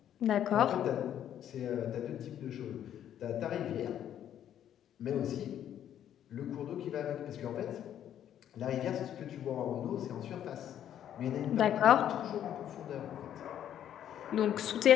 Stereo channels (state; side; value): quieter; right; 10.4 dB